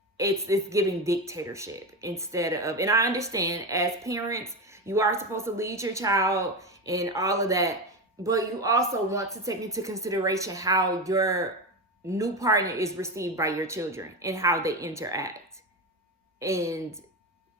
giving dictatorship instead of, and I understand as parents, you are supposed to lead your child and all of that, but you also want to take into consideration how your new partner is received by your children and how they interact. And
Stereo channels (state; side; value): normal; both; correlation 0.18